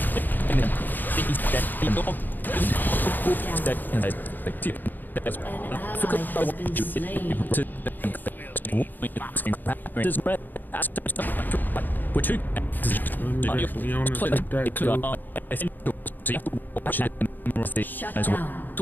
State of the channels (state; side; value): late; right; 0.088 ms